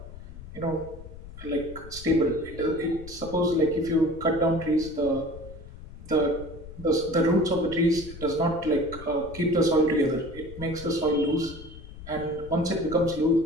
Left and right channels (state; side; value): noise; left; rumble, 15 dB below the sound